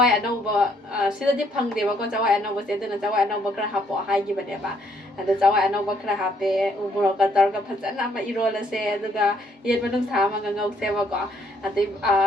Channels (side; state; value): both; normal; correlation 0.68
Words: anau ba sida di phang de ba ko chawai anau ba se duna chawai anau ba khara hapo hai gi ba de ba. Ada chawai anau ba khara hape umuro ka tar ka phajana ma irol se aduga yen manung sa ma ngau se ba ko ati